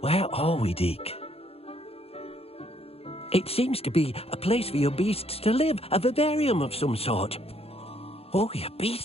Where are we, Deke? It seems to be a place for your beasts to live, a vivarium of some sort. Oh, your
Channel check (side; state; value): right; late; 0.29 ms